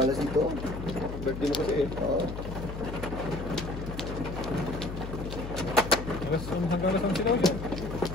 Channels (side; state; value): left; noise; hum, 8 dB below the sound